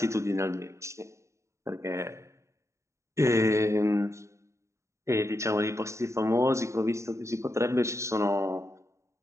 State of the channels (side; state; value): left; late; 0.14 ms